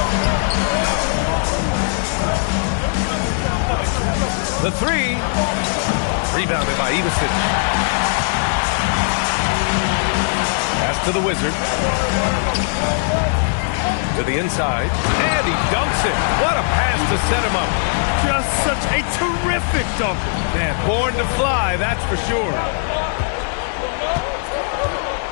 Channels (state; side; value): silent; right; 66 dB below the other